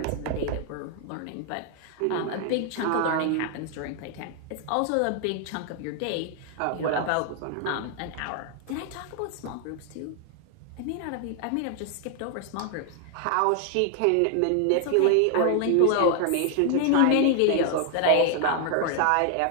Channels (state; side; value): different; both; correlation 0.00